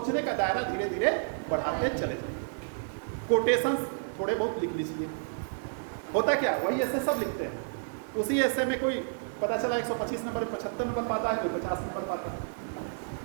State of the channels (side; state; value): left; silent; digital silence